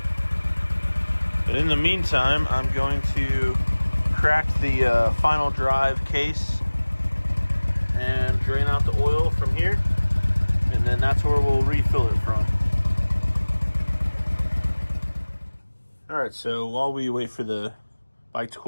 But in the meantime, I'm going to crack the final drive case and drain out the oil from here, and then that's where we'll refill it from. All right, so while we wait for the bike to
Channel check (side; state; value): both; inverted; correlation -1.00